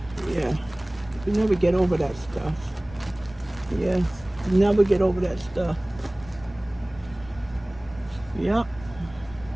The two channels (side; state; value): left; noise; rumble, 20 dB below the sound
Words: Yeah. We never get over that stuff. Yeah. Never get over that stuff. Yep.